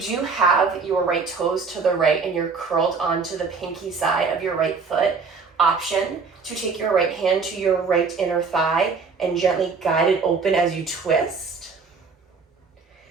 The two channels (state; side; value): quieter; left; 4.9 dB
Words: do have your right toes to the right and you're curled onto the pinky side of your right foot, option to take your right hand to your right inner thigh and gently guide it open as you twist.